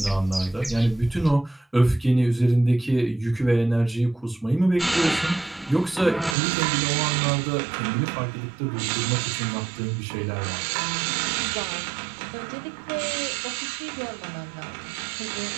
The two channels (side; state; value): left; drops out; at 6.4 s